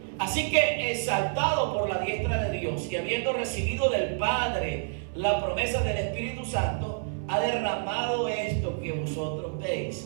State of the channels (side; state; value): left; silent; digital silence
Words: Así que, exaltado por la diestra de Dios y habiendo recibido del Padre la promesa del Espíritu Santo, ha derramado esto que vosotros